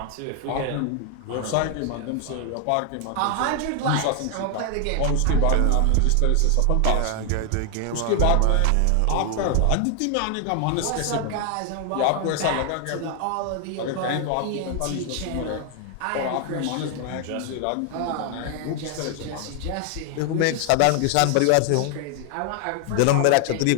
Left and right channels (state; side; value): different; both; correlation 0.00